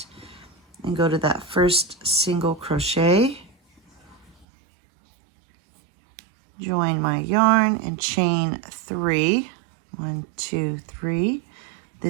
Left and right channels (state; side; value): drops out; left; at 4.5 s